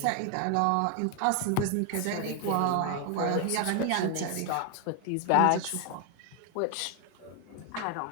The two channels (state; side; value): different; both; correlation 0.00